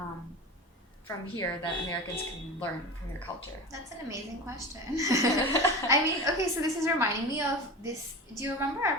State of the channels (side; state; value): both; normal; correlation 0.29